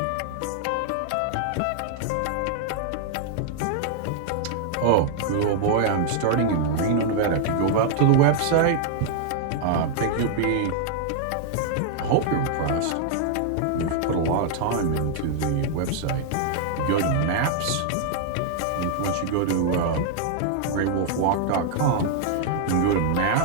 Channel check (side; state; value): both; different; correlation 0.00